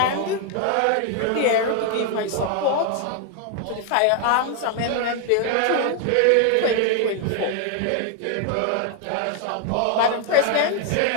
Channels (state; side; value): different; both; correlation 0.00